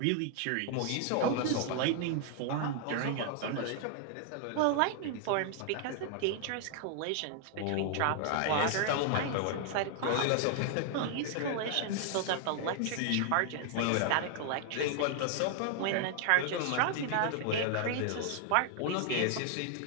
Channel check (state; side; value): different; both; correlation 0.00